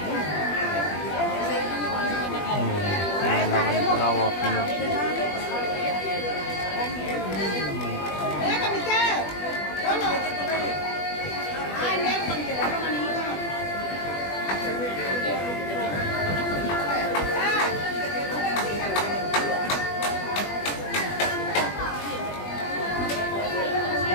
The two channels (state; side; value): late; right; 20 ms